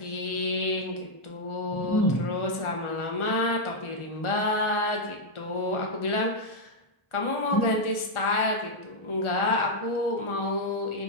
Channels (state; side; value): late; right; 1.4 ms